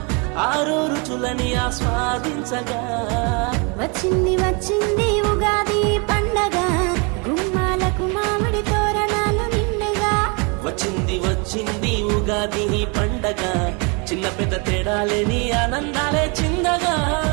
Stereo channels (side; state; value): left; quieter; 32.7 dB